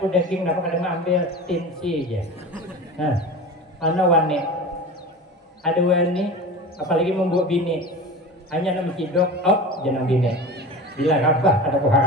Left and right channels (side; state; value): both; normal; correlation 0.32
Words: daging napa kada ambil tinsi aja. Nah, ana wani ada wani apalagi membuat bini hanya nama cidok jangan bini bila rabah ada